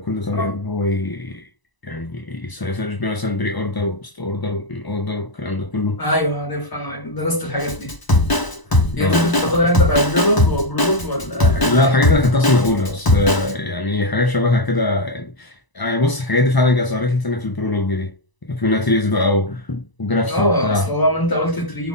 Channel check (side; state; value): right; late; 1.0 ms